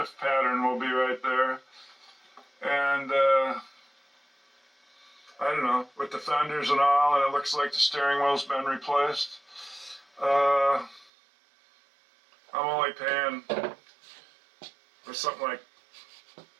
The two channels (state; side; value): drops out; left; at 11.1 s